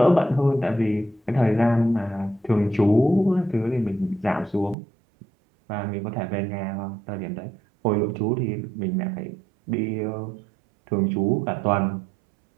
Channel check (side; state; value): left; drops out; at 4.8 s